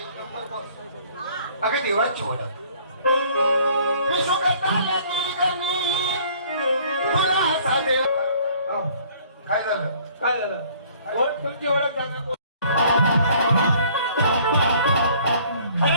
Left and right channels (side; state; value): both; inverted; correlation -0.56